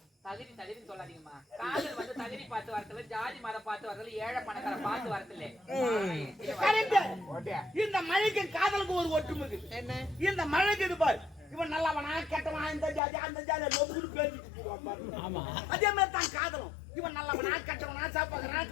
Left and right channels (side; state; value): right; drops out; at 13.0 s